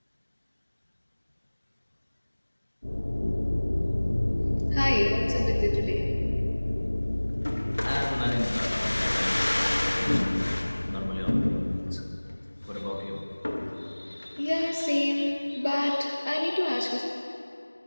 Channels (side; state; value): both; inverted; correlation -1.00